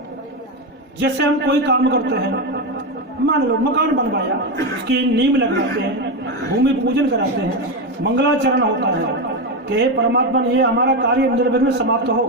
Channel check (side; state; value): both; normal; correlation 0.12